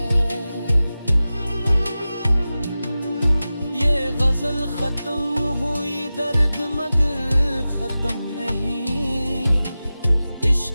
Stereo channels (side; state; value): both; inverted; correlation -0.95